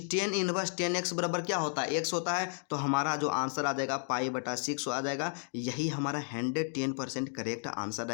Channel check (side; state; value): right; silent; 56 dB below the other